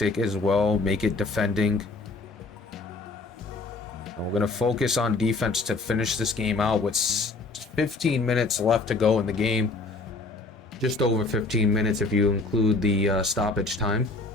as well, make it defending. And we're going to focus on defense to finish this game out with 15 minutes left to go in the game. Just over 15 minutes if you include the stoppage time.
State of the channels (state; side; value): quieter; right; 3.5 dB